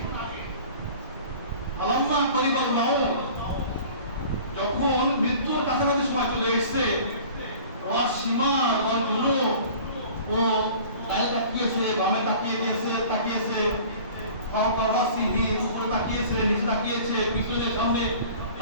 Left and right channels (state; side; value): inverted; both; correlation -0.45